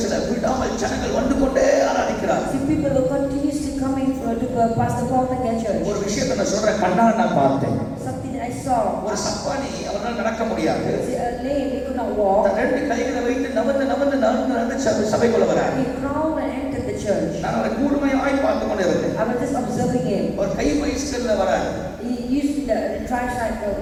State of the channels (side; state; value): both; identical; correlation 1.00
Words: விடாமல் ஜனங்கள் வந்து கொண்டே ஆராதிக்கிறார். See, people were continuously coming to Pastor Paul Mackay Church. ஒரு விஷயத்தை நான் சொல்றேன், கண்ணால் நான் பார்த்தேன். Something that I saw. ஒரு சப்பானி அவரால் நடக்க முடியாது. See, a lame, he could not walk. ரெண்டு கைகளை வைத்து நவந்து சபைக்குள்ள வரார். He crawled and entered the church. நான் அவரை கூர்மையாய் பார்த்து கொண்டு இருந்தேன். I was just observing him. ஒரு கை பைஸ்கல்ல வரார். He used the tricycle.